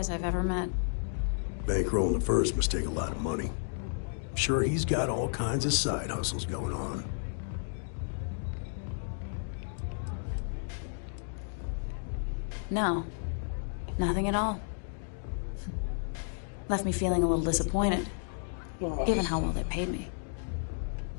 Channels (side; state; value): right; silent; digital silence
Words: I've ever met. Bankrolling the first must take a lot of money. I'm sure he's got all kinds of side hustles going on. No. Nothing at all. Left me feeling a little disappointed, given how well they paid me.